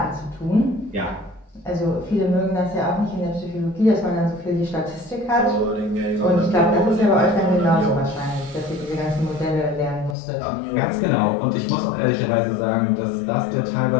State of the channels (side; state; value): right; drops out; at 10.2 s